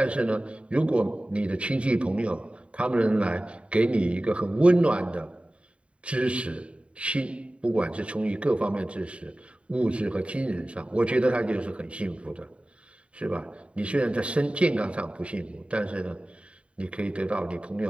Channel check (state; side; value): late; left; 0.061 ms